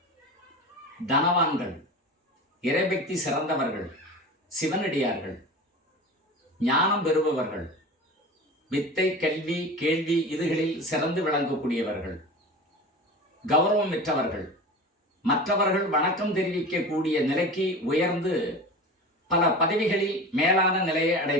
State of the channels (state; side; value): normal; both; correlation 0.32